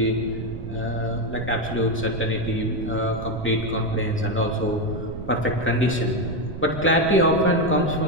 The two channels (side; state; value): right; noise; rumble, 9 dB below the sound